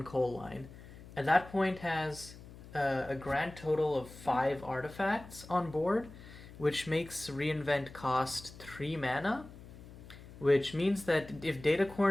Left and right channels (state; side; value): noise; left; hum, 17 dB below the sound